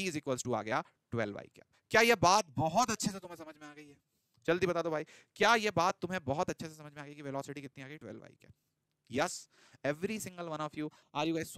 two आ गया 12i कैप। क्या यह बात बहुत अच्छे से तुम्हें समझ में आ गई है? जल्दी बता दो भाई, क्या यह बात तुम्हें बहुत अच्छे से समझ में आ गई कि वेलोसिटी कितनी आ गई, 12i cap? Yes, every single one of you, are you guys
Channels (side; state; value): both; identical; correlation 1.00